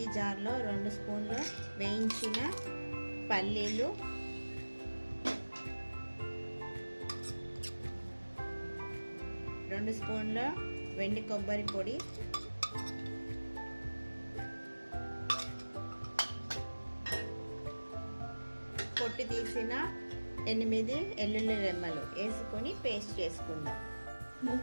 జార్లో 2 స్పూన్లు వేయించిన పల్లీలు, 2 స్పూన్ల వెండి కొబ్బరి పొడి, పొట్టి తీసిన 8 వెల్లుల్లి రెమ్మలు వేసుకొని పేస్ట్ చేసుకుందాం.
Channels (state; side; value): inverted; both; correlation -1.00